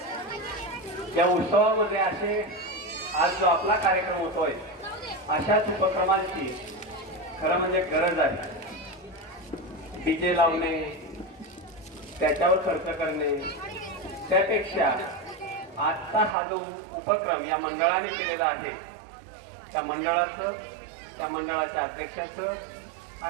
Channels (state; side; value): drops out; left; at 16.4 s